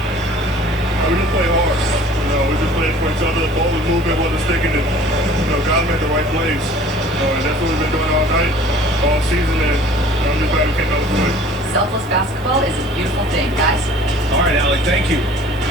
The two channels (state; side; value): normal; both; correlation 0.50